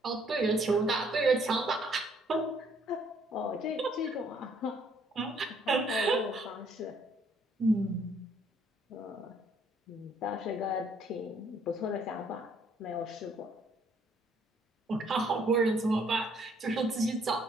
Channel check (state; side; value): normal; both; correlation 0.65